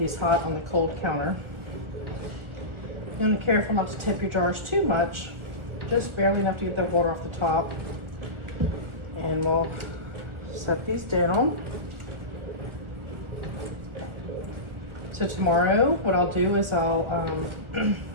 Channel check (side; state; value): left; late; 1.4 ms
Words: hot on the cold counter. You're gonna be careful not to tip your jars too much, just barely enough to get the water off the top. And we'll set these down. So tomorrow, what I'll do is I'll